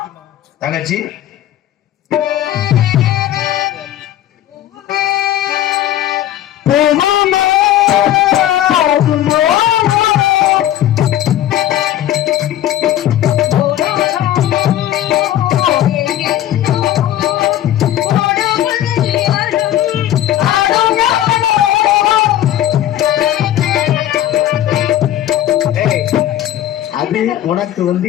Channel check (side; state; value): right; quieter; 12.5 dB